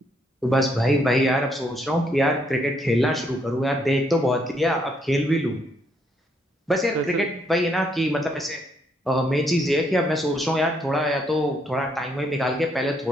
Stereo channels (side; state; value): both; normal; correlation 0.72